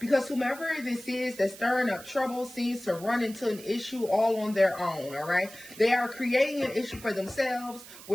whomever this is that's stirring up trouble seems to run into an issue all on their own, all right? They are creating an issue for themselves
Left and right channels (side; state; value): right; noise; hiss, 17 dB below the sound